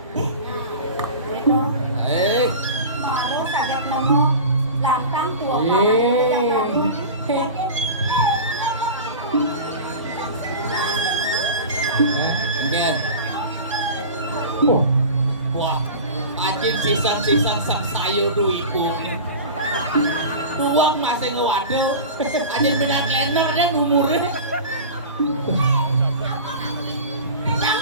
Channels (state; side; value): inverted; both; correlation -0.32